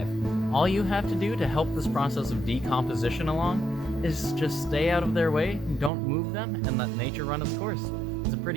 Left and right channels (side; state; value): left; drops out; at 5.9 s